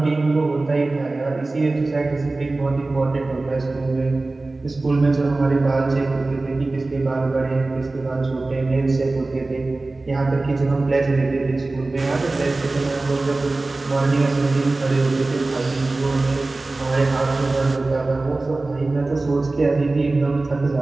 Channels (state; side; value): quieter; left; 3.2 dB